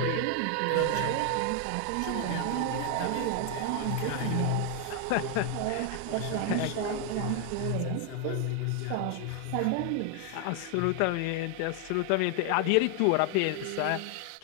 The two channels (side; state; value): both; different; correlation 0.00